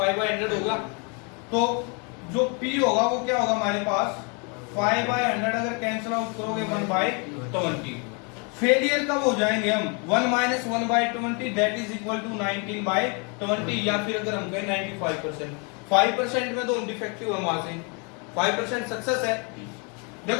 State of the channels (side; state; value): right; quieter; 34.2 dB